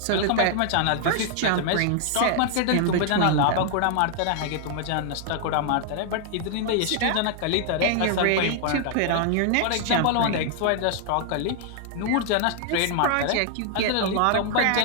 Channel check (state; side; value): different; both; correlation 0.00